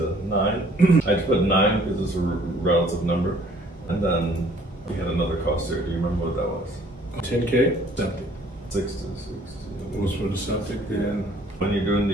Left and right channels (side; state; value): both; normal; correlation 0.57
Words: 9. I just put 9 because it's a relative number. And then we had another cost there. Do you remember what that was? 10K? Septic. 6 to 16. What was for the septic? When you're doing